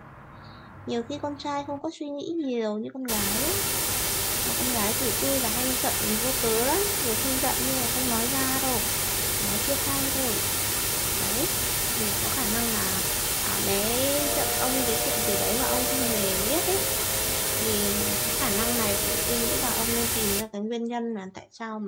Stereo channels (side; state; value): both; identical; correlation 1.00